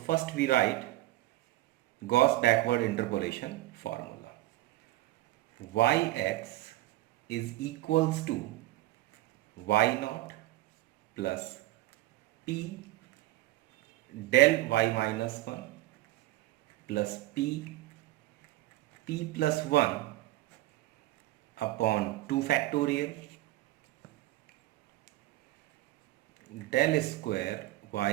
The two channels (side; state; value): left; quieter; 17.3 dB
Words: first we write Gauss backward interpolation formula. Yx is equals to y naught plus p del y minus 1 plus p plus 1 upon 2 factorial del square y